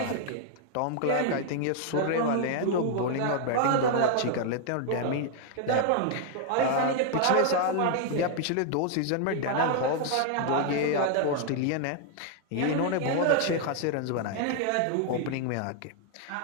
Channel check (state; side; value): different; both; correlation 0.00